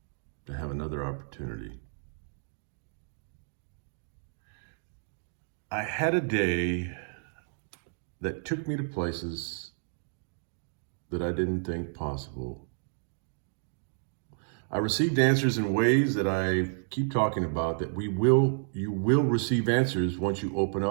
to have another opportunity. I had a day that took me to places that I didn't think possible. I received answers in ways that I keep talking about, that you will receive answers once you open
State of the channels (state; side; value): silent; left; digital silence